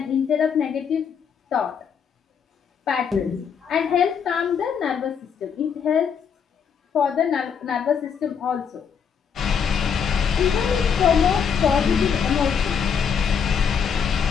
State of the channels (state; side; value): quieter; right; 7.0 dB